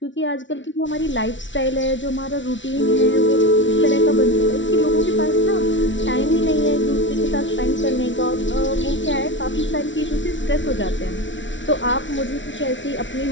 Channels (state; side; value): late; right; 0.55 ms